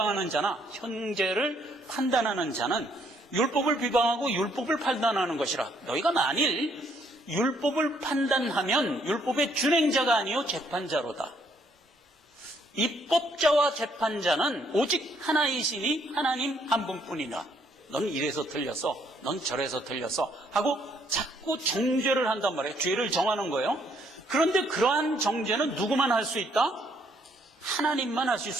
자나 형제를 판단하는 자는 율법을 비방하고 율법을 판단하는 것이라. 너희가 만일 율법을 판단하면 율법의 준행자가 아니요 재판자로다. 입법자와 재판자는 오직 하나이시니 하나님 한 분뿐이라. 넌 이래서 틀렸어, 넌 저래서 틀렸어 하고 자꾸 정죄를 한단 말이에요. 죄를 정하는 거예요. 그런데 그러한 정죄는 누구만 할 수 있다? 하나님만 하실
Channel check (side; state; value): both; normal; correlation 0.69